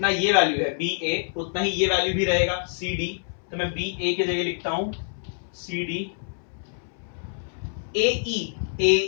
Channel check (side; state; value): right; silent; 61 dB below the other